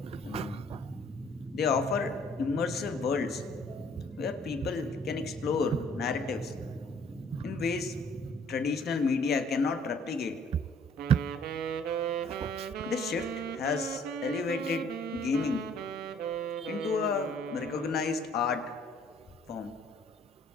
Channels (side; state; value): both; normal; correlation 0.58